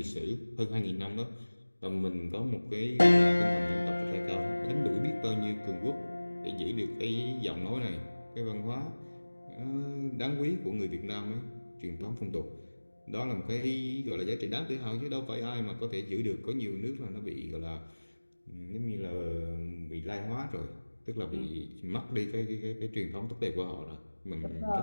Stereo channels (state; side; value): inverted; both; correlation -1.00